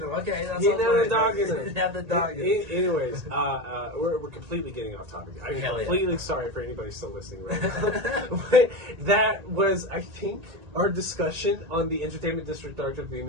him. Okay, that's he didn't have the dog in him. He didn't have the dog in him. Anyways, we're completely getting off topic. I'm completely sorry for anybody still listening right now. That was, I think, our discussion on the Entertainment District arc of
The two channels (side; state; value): left; late; 1.8 ms